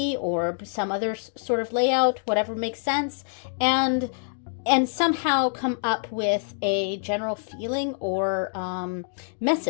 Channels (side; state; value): right; silent; digital silence